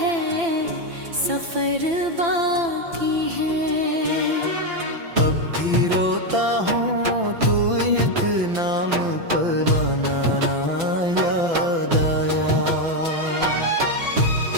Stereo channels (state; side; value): late; left; 5.9 ms